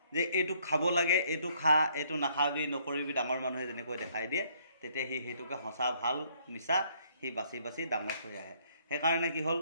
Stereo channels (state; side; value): inverted; both; correlation -0.66